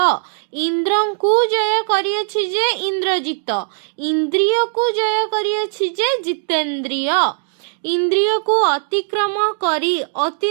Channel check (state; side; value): silent; left; digital silence